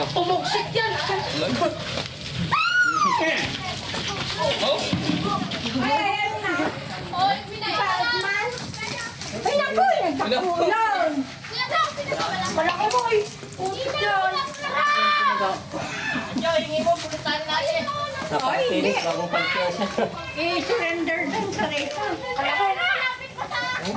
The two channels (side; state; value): both; identical; correlation 1.00